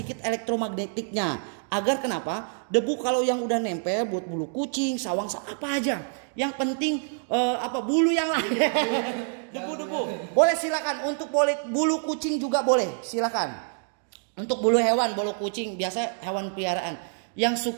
elektromagnetiknya. Agar kenapa? Debu kalau yang udah nempel buat bulu kucing, sawang, apa aja. Yang penting bulu yang lain. Debu-debu. Boleh silakan untuk bulu kucing juga boleh, silakan. Untuk bulu hewan, bulu kucing biasa hewan peliharaan. Yang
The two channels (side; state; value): left; silent; 60 dB below the other